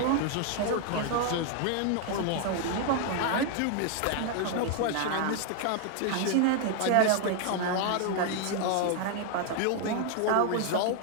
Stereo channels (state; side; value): different; both; correlation 0.00